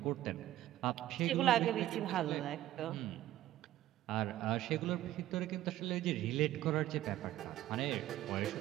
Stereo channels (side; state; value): left; quieter; 14.0 dB